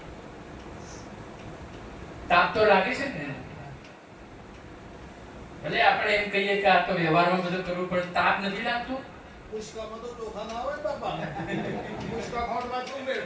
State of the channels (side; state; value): both; identical; correlation 1.00